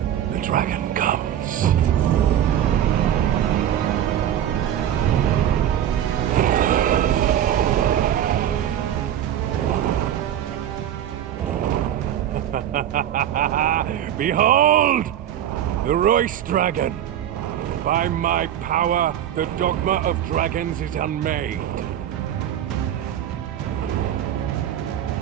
The dragon comes. Behold! The Royce Dragon! By my power, the Dogma of Dragons is unmade.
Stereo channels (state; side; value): quieter; left; 10.7 dB